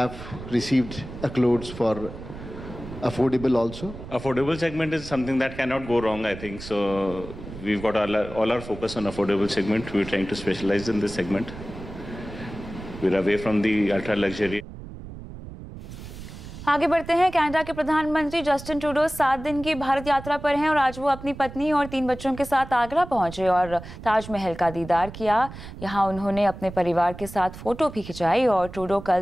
received accolades for affordable also. Affordable segment is something that cannot go wrong, I think. So we've got all our focus on affordable segment. We're trying to specialize in this segment. We're away from the ultra luxury. आगे बढ़ते हैं। Canada के प्रधानमंत्री Justin Trudeau 7 दिन की भारत यात्रा पर हैं और आज वो अपनी पत्नी और 3 बच्चों के साथ आगरा पहुंचे और ताजमहल का दीदार किया। यहां उन्होंने अपने परिवार के साथ फोटो भी खिंचाई और ट्रूडो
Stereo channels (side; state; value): right; noise; rumble, 13 dB below the sound